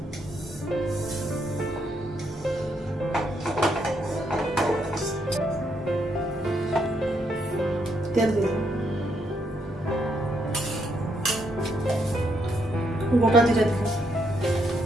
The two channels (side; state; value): both; normal; correlation 0.76